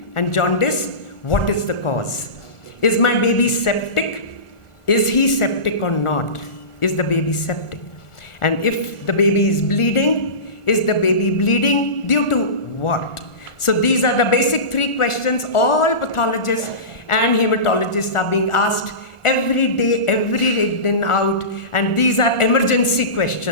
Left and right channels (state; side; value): late; right; 1.4 ms